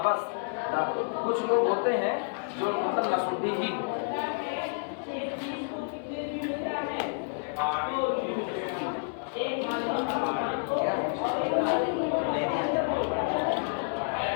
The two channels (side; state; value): right; silent; digital silence